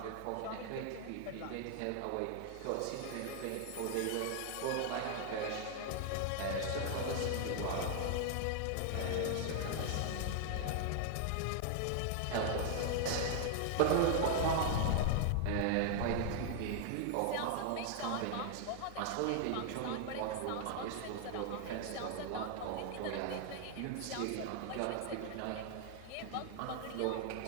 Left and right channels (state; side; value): different; both; correlation 0.00